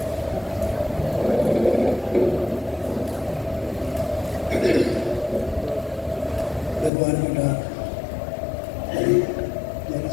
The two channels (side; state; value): right; drops out; at 6.9 s